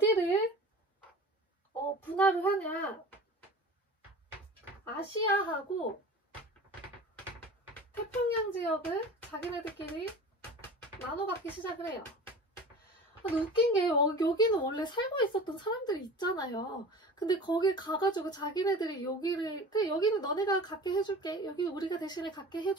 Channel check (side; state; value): both; normal; correlation 0.37